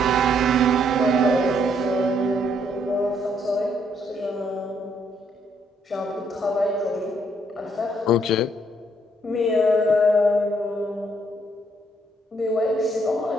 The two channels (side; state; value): both; normal; correlation 0.70